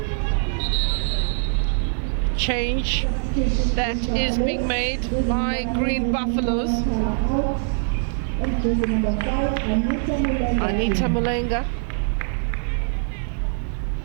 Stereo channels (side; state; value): left; silent; 63 dB below the other